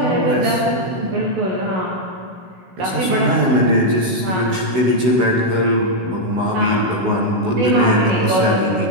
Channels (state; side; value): late; left; 16 ms